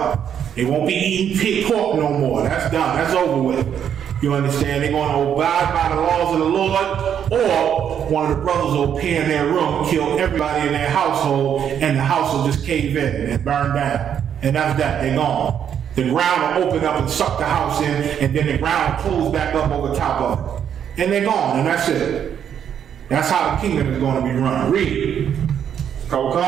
They won't be eating pig pork no more. That's done. That's over with. You understand? They're going to abide by the laws of the Lord, or one of the brothers will appear in their room, kill everybody in their household, and the house will just cave in and burn down. And that's that. They're gone. The ground will open up and suck the house in, and then the ground will close back up over top of it. And they're gone, and that's it. That's how the kingdom is going to be run. Read.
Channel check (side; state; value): left; quieter; 8.8 dB